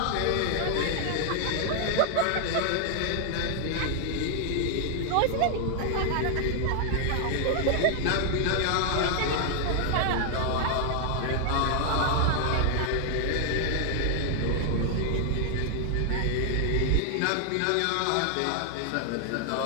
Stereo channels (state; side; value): different; both; correlation 0.00